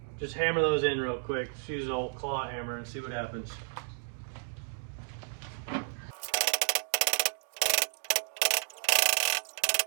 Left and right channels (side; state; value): left; silent; digital silence